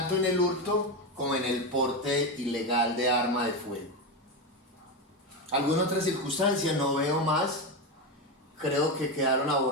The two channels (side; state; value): both; normal; correlation 0.14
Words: en el hurto como en el porte ilegal de arma de fuego. ¿Alguna otra circunstancia? No veo más. Creo que quedaron